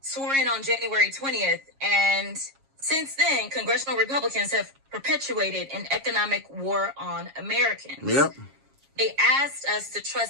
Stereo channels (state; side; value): late; left; 7.3 ms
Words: in on January 20th, and since then, congressional Republicans have perpetuated an economic war on Americans. Yep. They asked us to